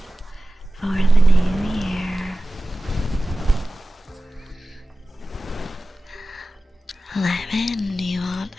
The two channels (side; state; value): both; normal; correlation 0.95